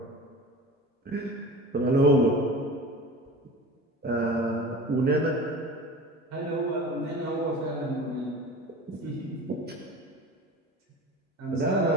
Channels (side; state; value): both; normal; correlation 0.36